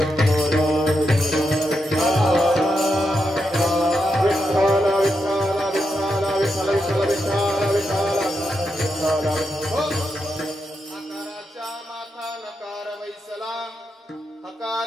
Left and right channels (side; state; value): both; normal; correlation 0.85